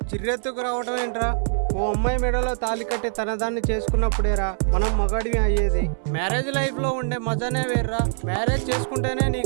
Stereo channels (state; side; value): silent; left; digital silence